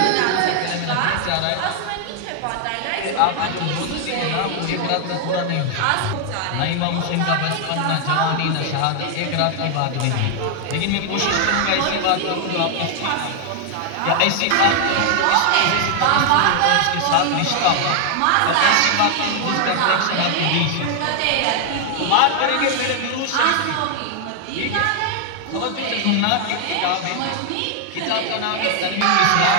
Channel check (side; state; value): both; different; correlation 0.00